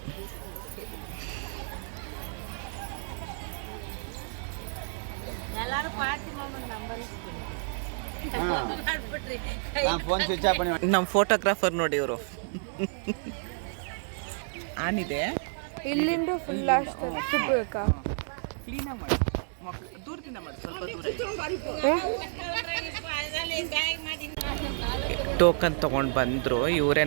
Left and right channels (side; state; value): left; silent; digital silence